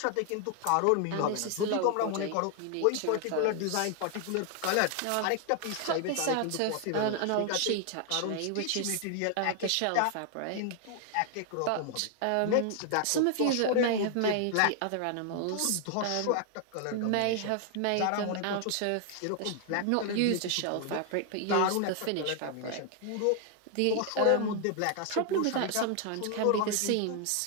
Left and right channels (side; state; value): both; different; correlation 0.00